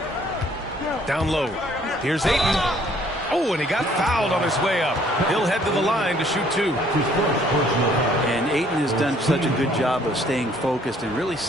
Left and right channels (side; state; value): both; normal; correlation 0.61